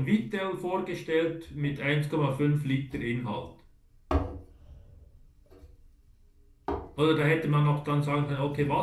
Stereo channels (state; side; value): identical; both; correlation 1.00